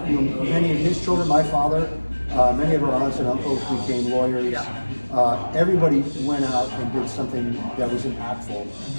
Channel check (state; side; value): inverted; both; correlation -1.00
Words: many of his children, my father, many of our aunts and uncles became lawyers. Everybody went out and did something that was impactful